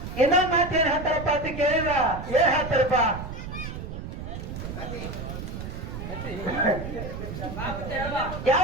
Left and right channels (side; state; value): right; noise; rumble, 8 dB below the sound